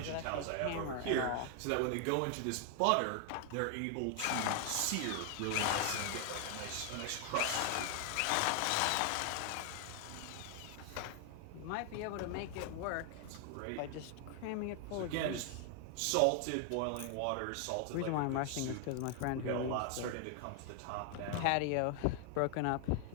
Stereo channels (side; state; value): both; different; correlation 0.00